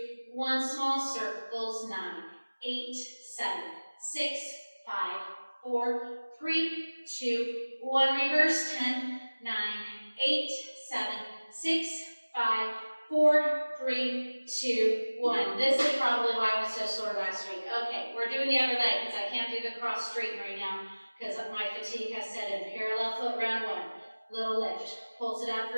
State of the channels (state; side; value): inverted; both; correlation -1.00